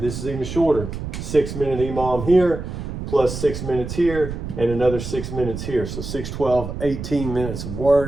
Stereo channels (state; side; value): noise; right; rumble, 7 dB below the sound